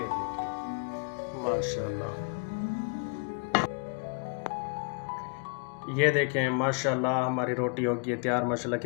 देखें माशाल्लाह, ये देखें माशाल्लाह हमारी रोटी हो गई है तैयार माशाल्लाह,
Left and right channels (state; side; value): quieter; right; 39.6 dB